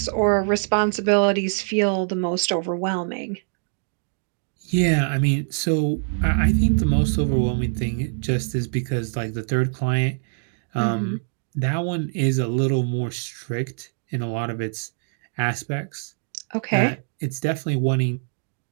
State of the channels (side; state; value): left; silent; digital silence